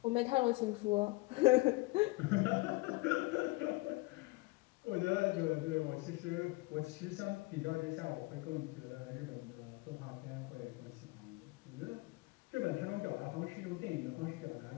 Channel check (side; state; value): right; quieter; 23.4 dB